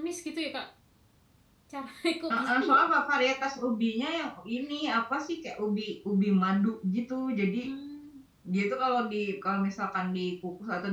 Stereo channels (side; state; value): both; identical; correlation 1.00